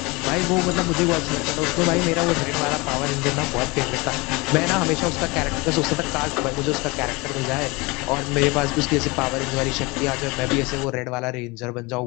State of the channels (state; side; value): quieter; right; 25.1 dB